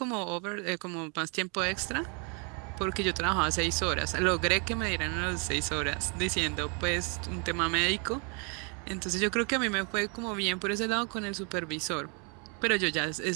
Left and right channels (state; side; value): quieter; left; 35.4 dB